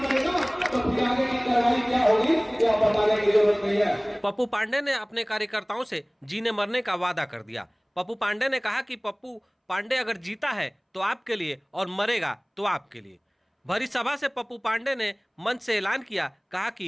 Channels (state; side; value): identical; both; correlation 1.00